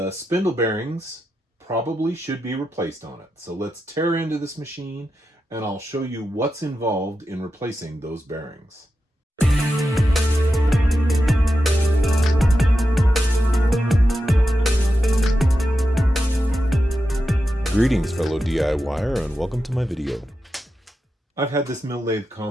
spindle bearings probably should be replaced on it. So let's tear into this machine and I'll show you what's involved in replacing those bearings. Greetings fellow DIYer, and welcome to my video. I've had this mill lathe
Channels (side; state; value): both; normal; correlation 0.89